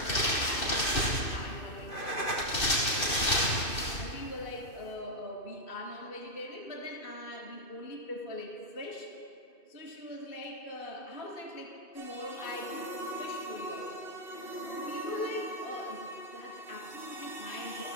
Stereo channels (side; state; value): right; late; 2.6 ms